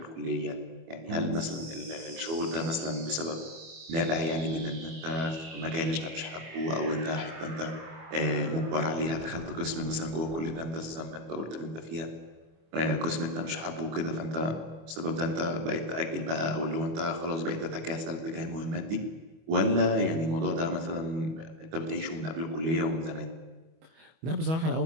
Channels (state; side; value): late; left; 25 ms